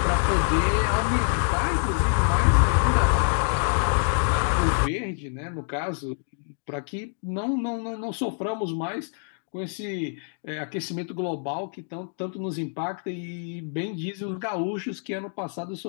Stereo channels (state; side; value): silent; right; 61 dB below the other